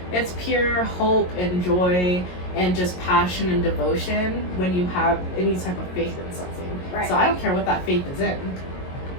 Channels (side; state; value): right; late; 22 ms